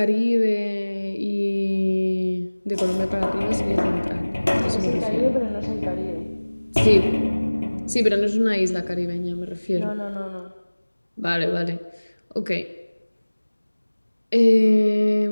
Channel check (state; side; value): inverted; both; correlation -1.00